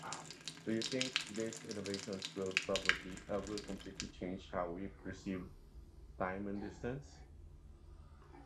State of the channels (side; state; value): both; identical; correlation 1.00